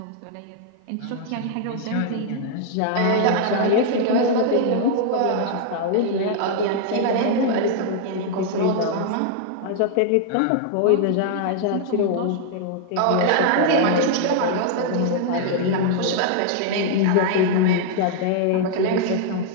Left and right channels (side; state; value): both; different; correlation -0.01